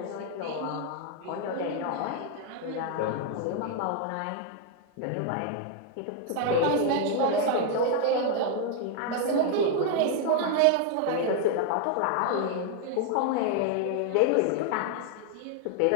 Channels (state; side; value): different; both; correlation 0.00